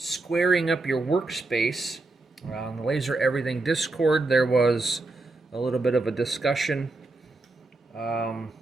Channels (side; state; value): left; quieter; 3.1 dB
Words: up your workspace. On the Laser Everything Discord there was a little bit of a discussion about